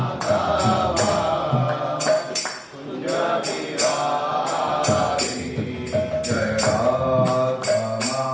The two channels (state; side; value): identical; both; correlation 1.00